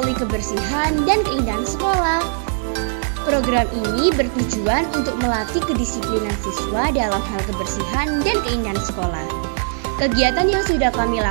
kebersihan dan keindahan sekolah. Program ini bertujuan untuk melatih kedisiplinan siswa dalam hal kebersihan dan keindahan sekolah. Kegiatan yang sudah kami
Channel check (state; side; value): silent; left; digital silence